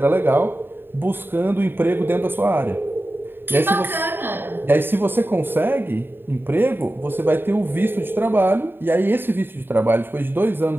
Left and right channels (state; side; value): late; left; 0.10 ms